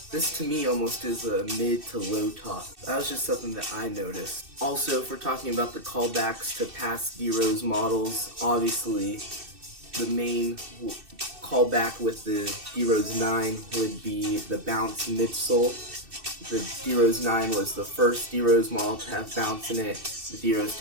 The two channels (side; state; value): left; late; 2.6 ms